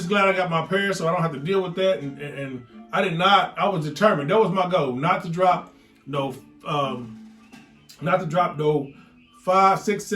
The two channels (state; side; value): identical; both; correlation 1.00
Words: glad I got my pair so I don't have to deal with that. And I was determined. That was my goal, not to drop no $500,